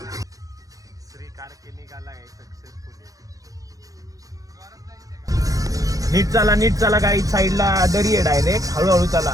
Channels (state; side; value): late; left; 0.17 ms